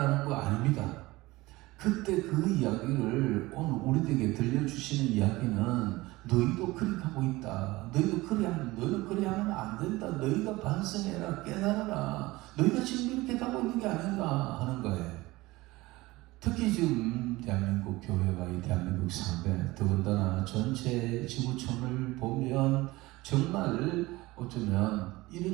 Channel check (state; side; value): quieter; left; 20.1 dB